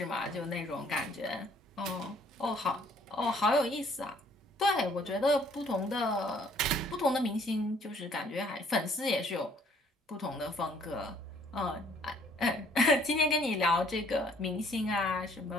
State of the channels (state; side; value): normal; both; correlation 0.60